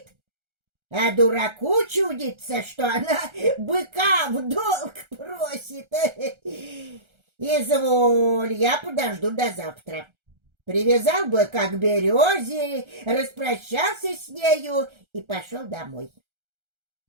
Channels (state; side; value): late; left; 1.3 ms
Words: а дураку чудится, что она быка в долг просит. Изволь, я подожду до завтра. Привязал быка к березе, распрощался с нею и пошел домой.